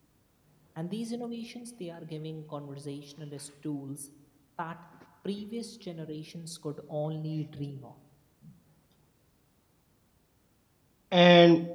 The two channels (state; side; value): identical; both; correlation 1.00